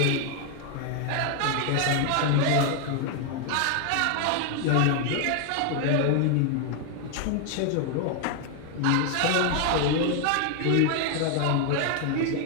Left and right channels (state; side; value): different; both; correlation 0.01